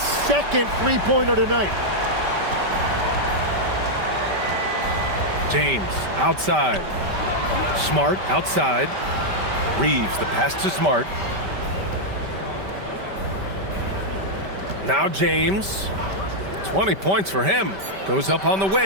second 3-pointer tonight. James outside. Smart outside. Reeves, the pass to Smart. Now James. 20 points for him. Goes up on the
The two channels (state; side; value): late; left; 5.1 ms